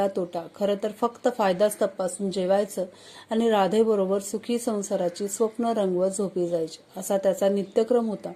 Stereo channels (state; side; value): identical; both; correlation 1.00